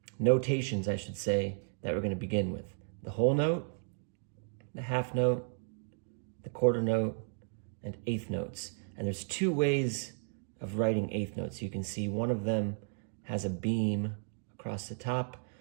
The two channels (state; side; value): silent; left; digital silence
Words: notations I should say, that we're going to begin with. The whole note, the half note, the quarter note, and eighth notes. And there's two ways of writing eighth notes. You can see one of them has a beam across the top